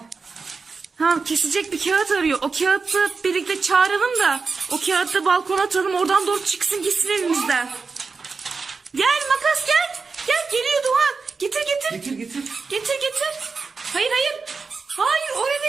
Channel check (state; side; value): quieter; left; 4.7 dB